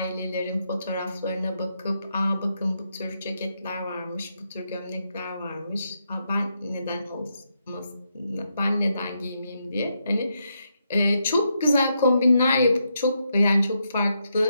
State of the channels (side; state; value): both; inverted; correlation -0.81